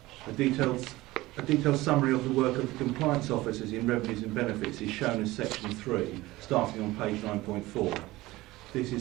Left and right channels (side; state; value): left; quieter; 18.8 dB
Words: A detailed summary of the work of the compliance officers in revenues and benefits is shown as section 3, starting on page 9.4. This